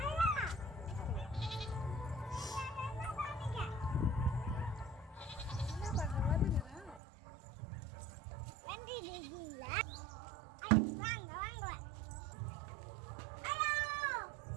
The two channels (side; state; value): left; drops out; at 7.0 s